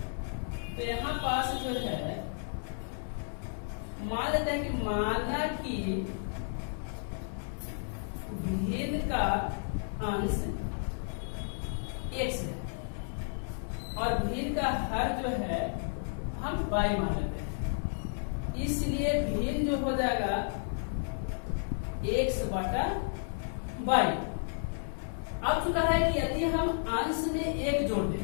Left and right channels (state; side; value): silent; right; digital silence